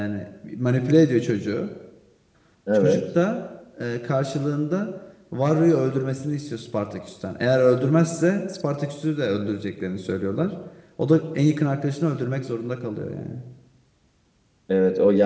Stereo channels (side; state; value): both; identical; correlation 1.00